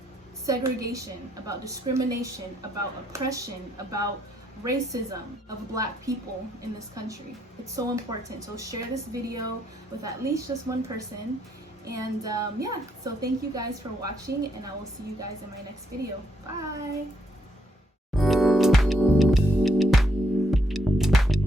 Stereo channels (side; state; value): both; normal; correlation 0.74